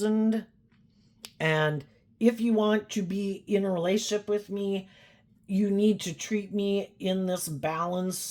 And if you want to be in a relationship with me, you need to treat me in this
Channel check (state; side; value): identical; both; correlation 1.00